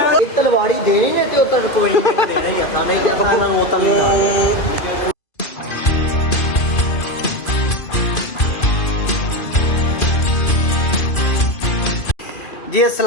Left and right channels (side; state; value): right; late; 2.5 ms